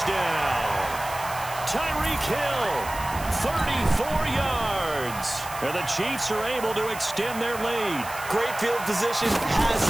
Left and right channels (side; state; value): right; noise; hiss, 13 dB below the sound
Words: Tyreek Hill, 34 yards. And the Chiefs are able to extend their lead. Great field position has